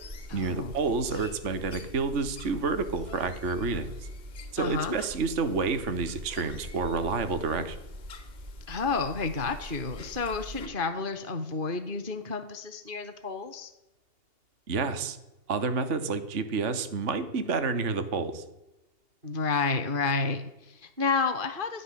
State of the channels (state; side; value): late; left; 2.8 ms